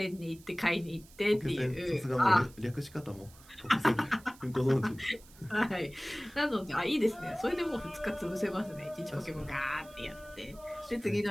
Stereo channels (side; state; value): right; noise; hiss, 23 dB below the sound